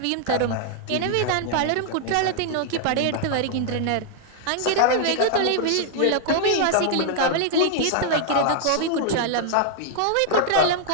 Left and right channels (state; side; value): different; both; correlation -0.01